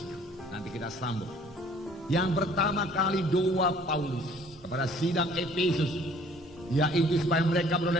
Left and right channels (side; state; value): both; normal; correlation 0.56